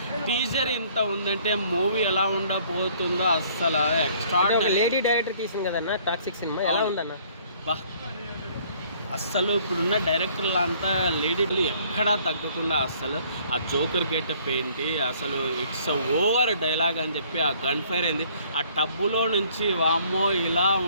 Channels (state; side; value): inverted; both; correlation -0.59